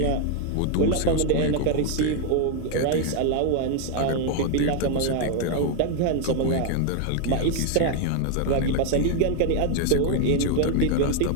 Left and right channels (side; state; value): both; different; correlation 0.01